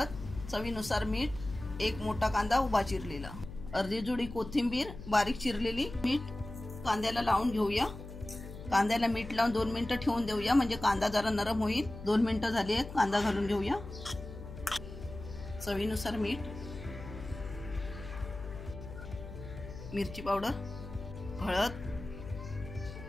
चवीनुसार मीठ, एक मोठा कांदा उभा चिरलेला, अर्धी जुडी कोथिंबीर बारीक चिरलेली, मीठ कांद्याला लावून घेऊया। कांद्याला मीठ लावून 2 मिनिटं ठेवून देऊया, म्हणजे कांदा जरा नरम होईल। 2 मिनिटं झाली आहेत, कांदा घालून घेऊया। चवीनुसार मीठ, मिरची पावडर, हळद,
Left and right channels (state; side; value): noise; left; hum, 12 dB below the sound